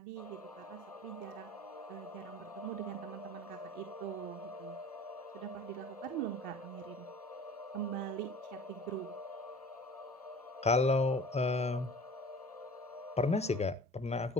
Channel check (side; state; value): both; normal; correlation 0.44